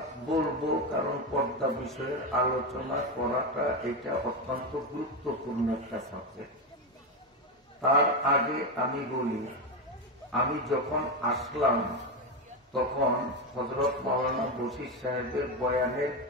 বলবো, কারণ পর্দা বিষয়ের আলোচনা করাটা এটা অত্যন্ত গুরুত্বপূর্ণ একটা সাবজেক্ট। তার আগে আমি বলি, আমি যখন আসলাম তখন হযরত মাওলানা বশির সাহেবের বয়ানের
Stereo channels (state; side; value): normal; both; correlation 0.12